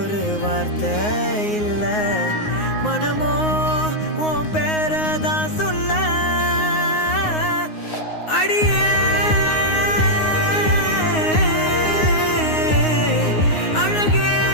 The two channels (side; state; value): right; late; 9.6 ms